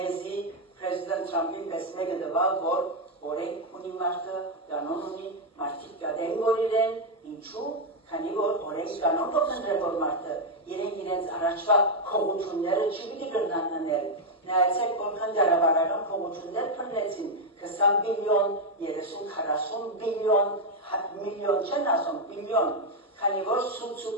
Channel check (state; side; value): normal; both; correlation 0.02